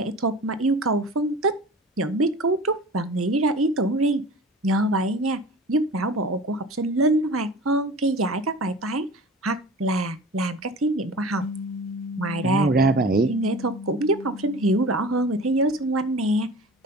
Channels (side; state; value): both; normal; correlation 0.39